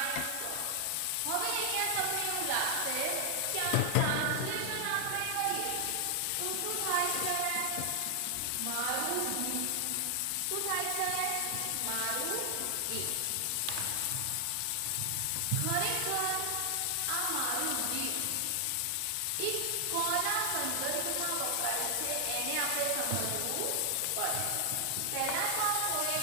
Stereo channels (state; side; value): different; both; correlation 0.00